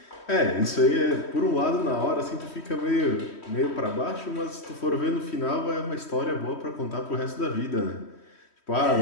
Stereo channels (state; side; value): late; right; 3.1 ms